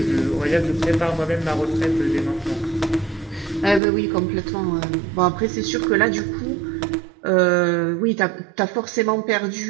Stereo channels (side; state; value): left; drops out; at 3.8 s